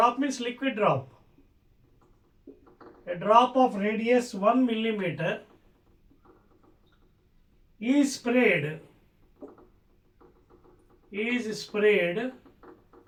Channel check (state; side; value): identical; both; correlation 1.00